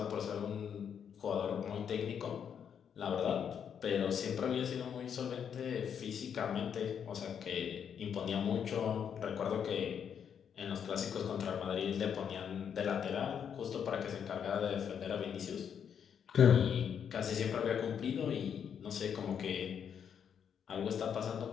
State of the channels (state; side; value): quieter; right; 7.9 dB